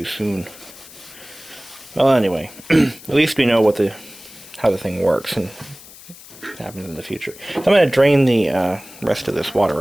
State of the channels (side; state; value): left; noise; hiss, 19 dB below the sound